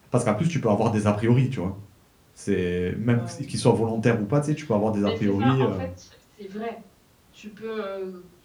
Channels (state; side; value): identical; both; correlation 1.00